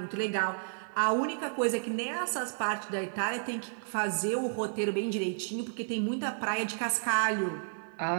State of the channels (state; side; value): silent; left; 57 dB below the other